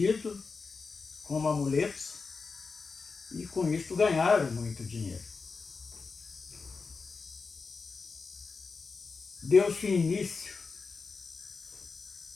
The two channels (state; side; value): quieter; right; 4.6 dB